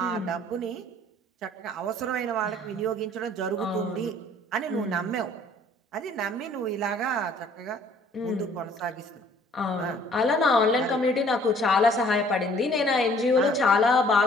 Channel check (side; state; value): both; normal; correlation 0.57